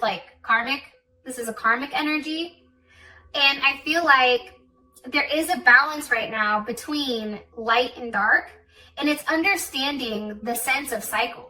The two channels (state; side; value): identical; both; correlation 1.00